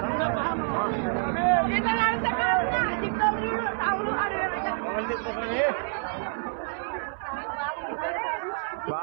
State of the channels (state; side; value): silent; left; 58 dB below the other